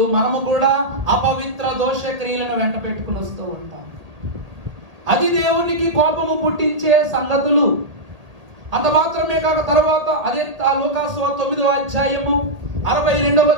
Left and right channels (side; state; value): left; late; 1.8 ms